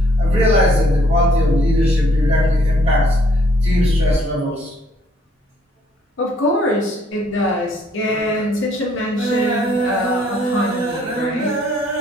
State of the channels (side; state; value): both; normal; correlation 0.64